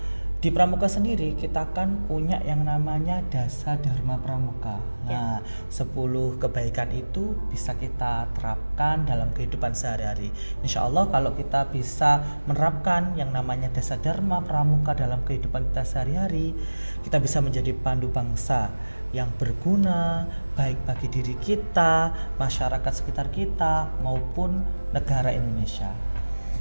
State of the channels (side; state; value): both; inverted; correlation -1.00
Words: di Pramuka sendiri kita kan punya yang namanya Dasa Dharma Pramuka. Nah, 10 kebaikan itu bisa kita terapkan dalam kehidupan sehari-hari. Insya Allah kalau kita bisa menerapkan yang namanya Dasa Dharma Pramuka dalam kehidupan kita sehari-hari, kita bisa menjadi pandu bangsa yang berguna baik bagi diri kita, masyarakat sekitar kita maupun negara Indonesia.